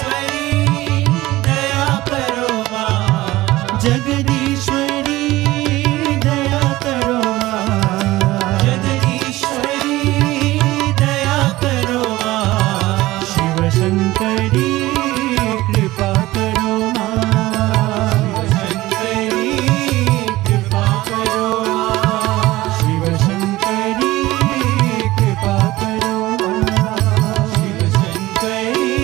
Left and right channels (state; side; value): quieter; left; 17.9 dB